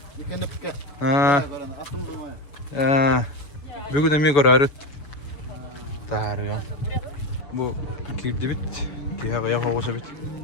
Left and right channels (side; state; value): right; late; 7.3 ms